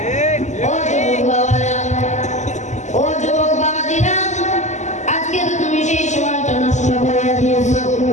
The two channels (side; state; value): right; late; 0.34 ms